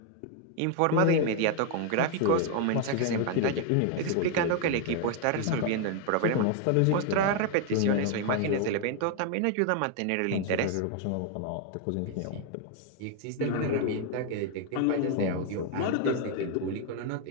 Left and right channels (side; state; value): both; different; correlation 0.01